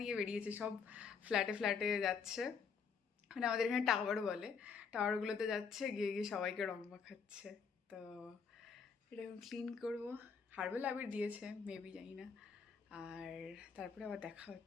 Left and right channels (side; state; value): right; quieter; 6.0 dB